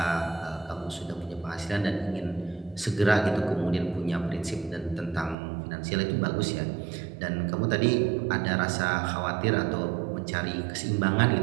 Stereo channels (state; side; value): drops out; left; at 5.4 s